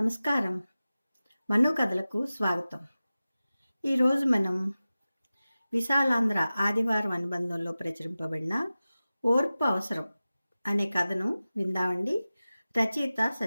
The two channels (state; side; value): inverted; both; correlation -0.96